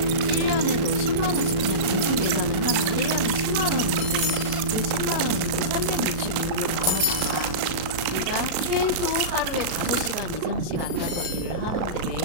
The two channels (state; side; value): late; left; 37 ms